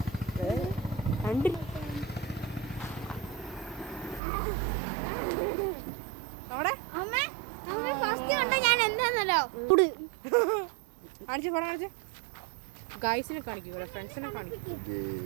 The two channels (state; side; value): drops out; left; at 4.2 s